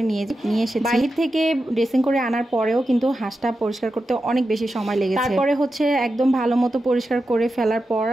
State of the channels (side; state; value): both; normal; correlation 0.90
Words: নিয়ে এসেছি। বাইরে থেকে ড্রেসিং করে আনার পরেও কিন্তু হাঁসটা পরিষ্কার করতে অনেক বেশি সময় লেগেছে। তারপরে হচ্ছে একদম ভালো মতো পরিষ্কার করে ফেলার পর